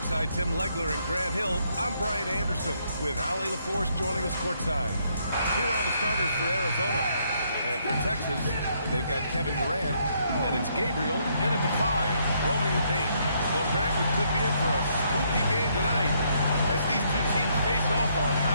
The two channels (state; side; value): inverted; both; correlation -0.72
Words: Tim Legler and Grant Hill, I'm Brian Anderson with Allie LaForce joining us courtside. Here are the starters for Arizona. And for Texas, they've got Kevin Durant, and it's Gabriel in at the 5, roaming the paint. Well, Grant, we could be in for a spooky game tonight as these two teams face off on